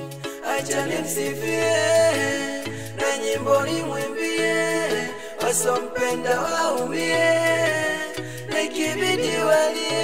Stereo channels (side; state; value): both; identical; correlation 1.00